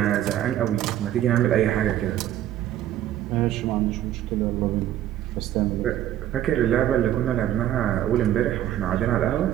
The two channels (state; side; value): quieter; left; 12.2 dB